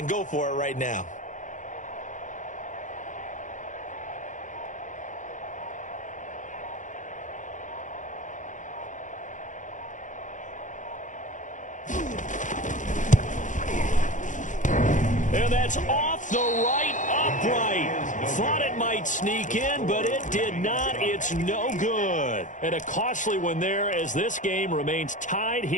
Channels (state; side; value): late; right; 0.37 ms